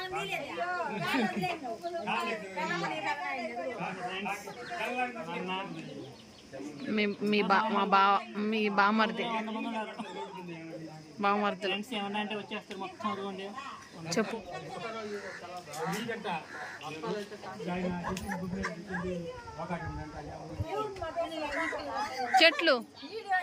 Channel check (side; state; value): both; identical; correlation 1.00